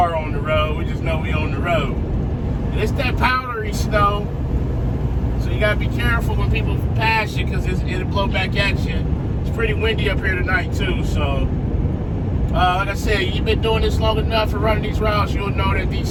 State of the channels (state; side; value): identical; both; correlation 1.00